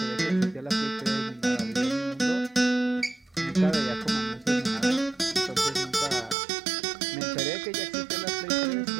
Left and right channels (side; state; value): left; drops out; at 6.4 s